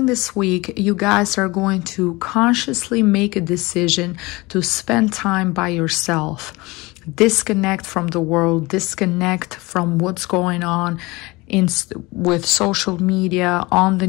this week, you guys are going to consciously make a decision to spend time by yourself. Disconnect from the world, disconnect from what's going on with social media, on the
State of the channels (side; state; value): right; quieter; 22.9 dB